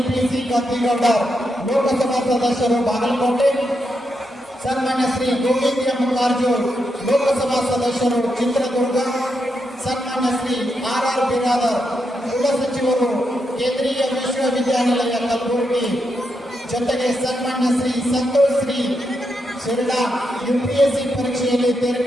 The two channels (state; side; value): normal; both; correlation 0.83